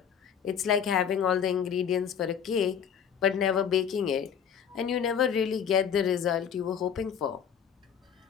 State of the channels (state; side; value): quieter; right; 7.9 dB